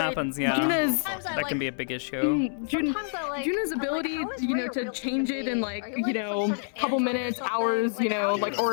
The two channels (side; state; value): right; silent; digital silence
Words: Juna's- that can be a big issue. Juna's ability, to change it in couple minutes, hours,